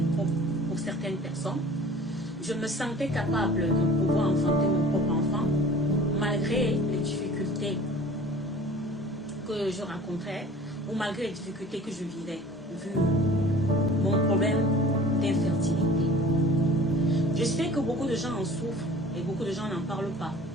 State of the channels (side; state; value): both; normal; correlation 0.45